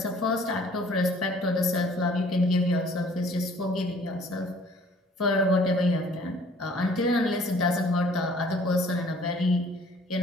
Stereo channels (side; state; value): both; normal; correlation 0.55